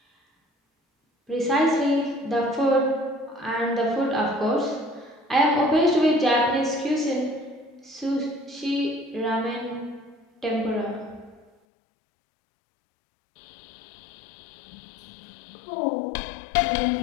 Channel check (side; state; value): right; drops out; at 11.5 s